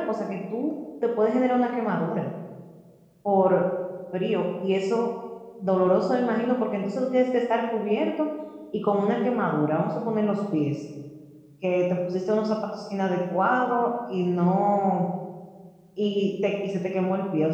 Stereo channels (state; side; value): identical; both; correlation 1.00